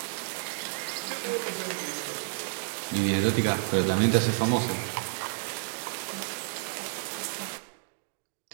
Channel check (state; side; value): silent; left; digital silence